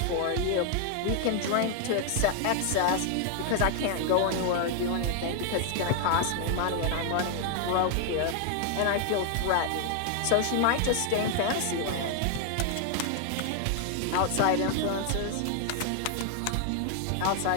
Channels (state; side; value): different; both; correlation 0.00